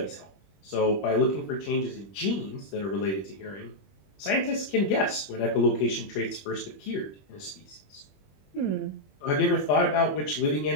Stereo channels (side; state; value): right; late; 21 ms